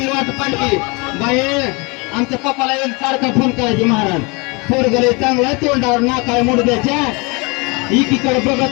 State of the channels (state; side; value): quieter; right; 28.5 dB